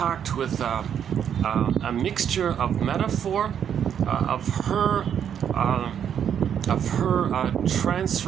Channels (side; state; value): left; quieter; 8.7 dB